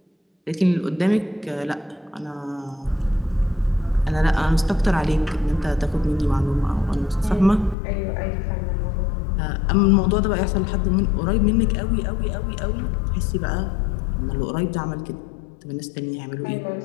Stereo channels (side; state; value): right; drops out; at 7.8 s